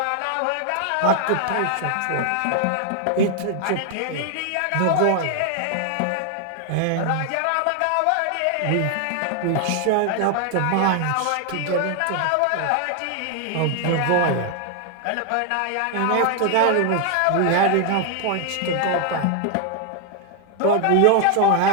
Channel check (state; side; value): different; both; correlation 0.00